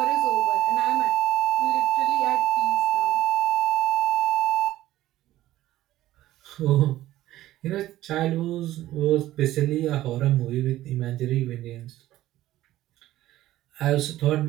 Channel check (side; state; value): left; quieter; 14.8 dB